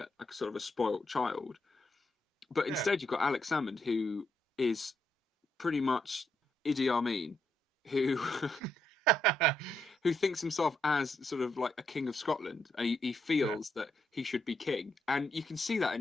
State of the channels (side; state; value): both; normal; correlation 0.78